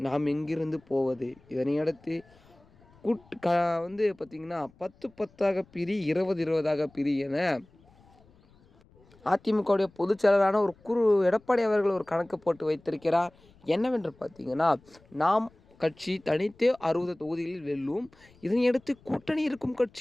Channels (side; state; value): left; noise; rumble, 29 dB below the sound